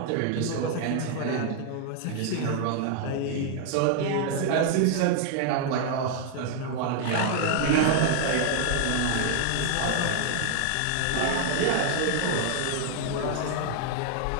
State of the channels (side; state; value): both; different; correlation 0.00